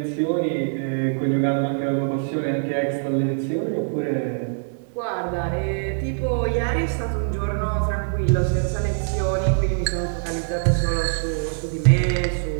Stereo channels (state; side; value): silent; left; digital silence